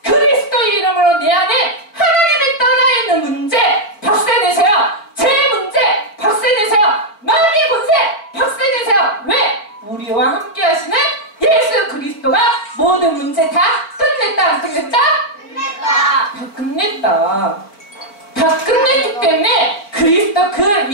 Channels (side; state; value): right; late; 4.5 ms